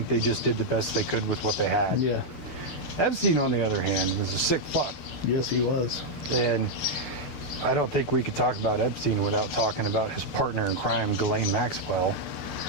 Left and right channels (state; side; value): late; right; 6.8 ms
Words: they just did the best they could with what they had. Yeah. Epstein, on the other hand, was a sick fuck. Yes, he was. And I don't think we could talk about Epstein without talking about his partner in crime, Ghislaine Maxwell.